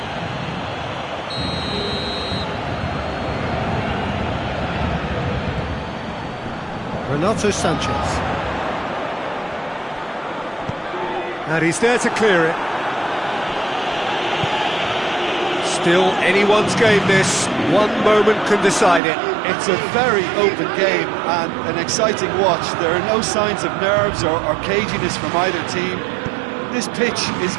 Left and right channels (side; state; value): left; drops out; at 19.0 s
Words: Renato Sanchez. And he's there to clear it. Still anyone's game this. One moment can decide it. It's a very open game and an exciting watch. There are no signs of nerves or caginess from either team. This pitch is